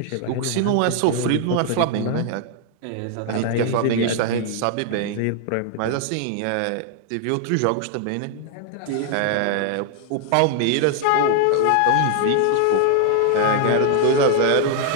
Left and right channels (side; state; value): both; different; correlation 0.00